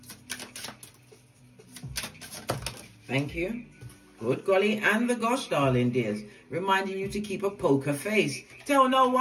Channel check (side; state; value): both; identical; correlation 1.00